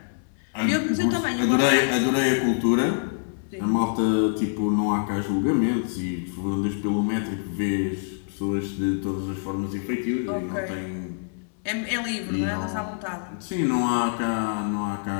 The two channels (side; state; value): right; silent; digital silence